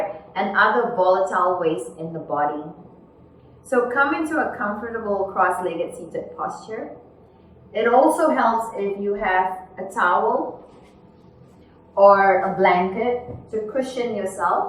and other volatile waste in the body. So come into a comfortable cross-legged seated posture. It also helps if you have a towel or a blanket to cushion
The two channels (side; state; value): both; identical; correlation 1.00